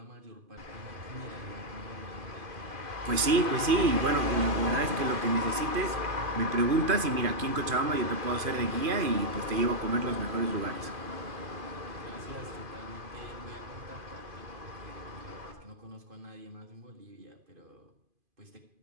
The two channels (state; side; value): late; left; 2.5 ms